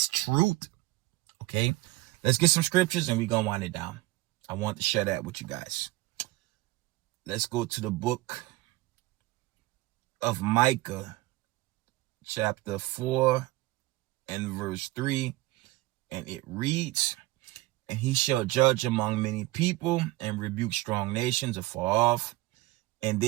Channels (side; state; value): left; quieter; 19.4 dB